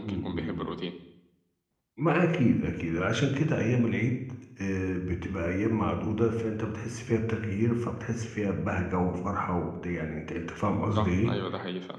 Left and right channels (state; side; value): identical; both; correlation 1.00